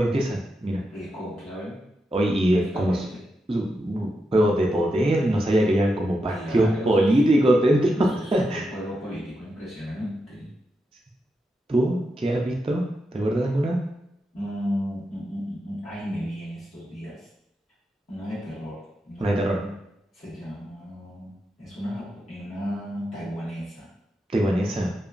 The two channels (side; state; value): both; normal; correlation 0.86